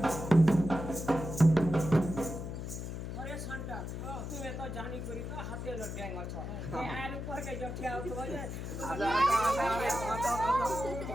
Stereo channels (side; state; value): left; noise; hum, 6 dB below the sound